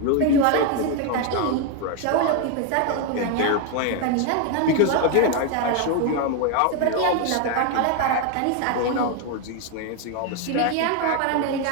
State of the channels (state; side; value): different; both; correlation 0.01